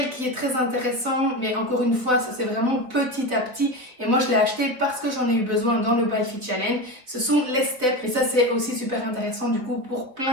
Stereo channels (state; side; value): late; left; 4.1 ms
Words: qui est très intéressant, mais encore une fois ça c'est vraiment petit à petit, et moi je l'ai acheté parce que j'en ai eu besoin dans le MyFit Challenge, ce sont les steps, et ça c'est aussi super intéressant du coup pour